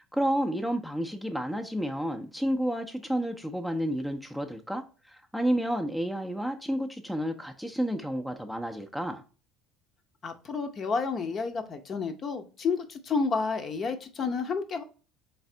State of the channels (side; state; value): both; normal; correlation 0.83